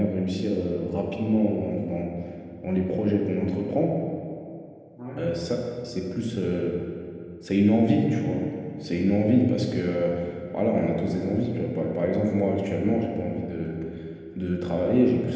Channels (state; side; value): identical; both; correlation 1.00